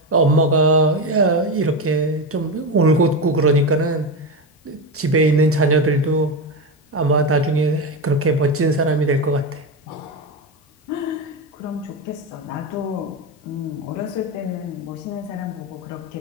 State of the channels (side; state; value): both; normal; correlation 0.15